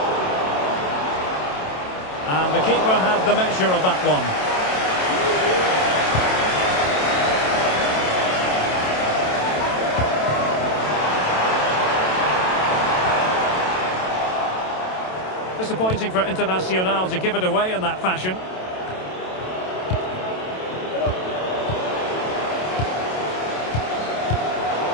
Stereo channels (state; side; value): late; right; 27 ms